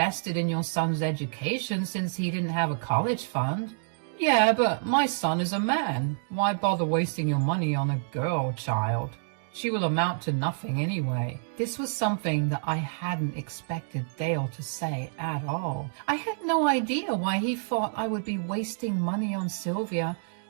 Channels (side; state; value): left; silent; digital silence